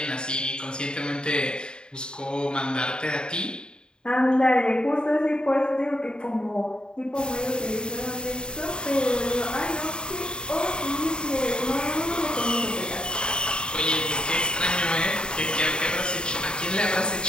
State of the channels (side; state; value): right; late; 0.049 ms